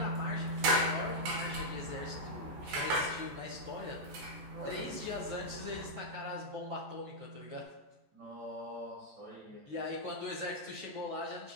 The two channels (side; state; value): left; late; 14 ms